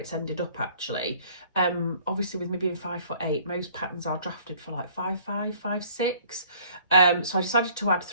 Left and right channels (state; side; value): inverted; both; correlation -0.56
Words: ended up actually. Obviously with me being 5'8", most patterns are drafted for like 5'5", 5'6", so I decided to add